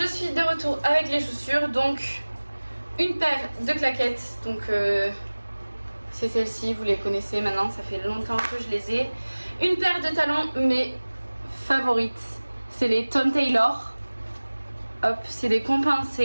suis de retour avec les chaussures. Donc, une paire de claquettes. Donc, c'est celle-ci, vous les connaissez maintenant, ça fait longtemps que je les ai. Une paire de talons, mes favorites. C'est les Tom Taylor. Hop, c'est des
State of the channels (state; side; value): inverted; both; correlation -1.00